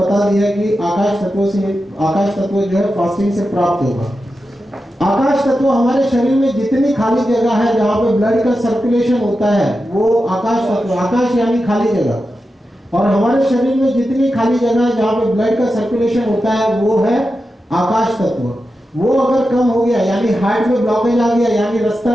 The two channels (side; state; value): both; normal; correlation 0.90